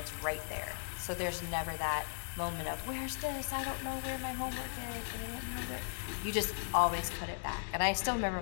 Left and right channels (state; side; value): silent; right; digital silence